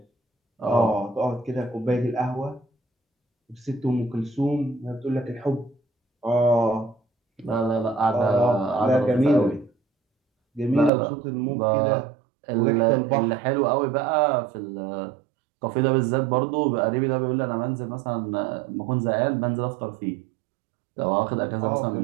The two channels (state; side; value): drops out; left; at 10.9 s